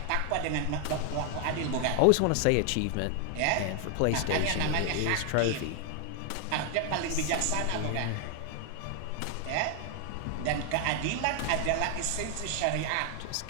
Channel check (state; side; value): different; both; correlation 0.00